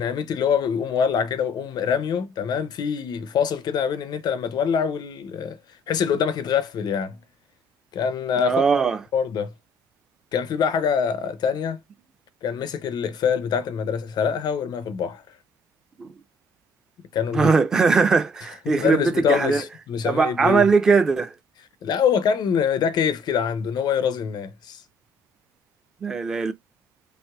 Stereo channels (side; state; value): both; normal; correlation 0.61